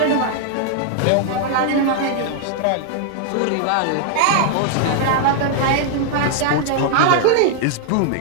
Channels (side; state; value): both; different; correlation 0.00